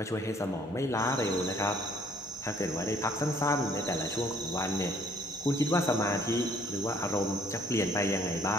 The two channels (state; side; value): normal; both; correlation 0.61